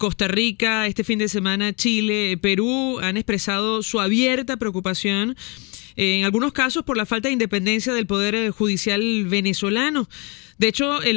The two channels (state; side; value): quieter; right; 31.0 dB